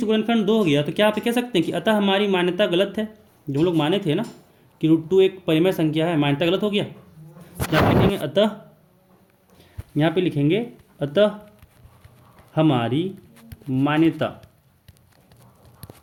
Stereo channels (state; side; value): identical; both; correlation 1.00